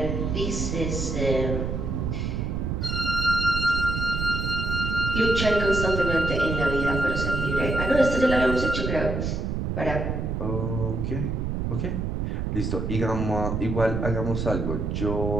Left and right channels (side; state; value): right; noise; rumble, 1 dB below the sound